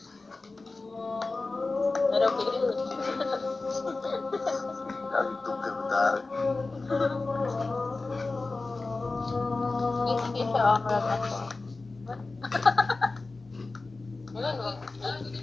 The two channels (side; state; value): right; quieter; 3.5 dB